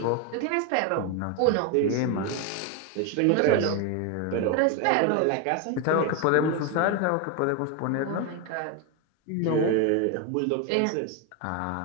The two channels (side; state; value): both; different; correlation 0.02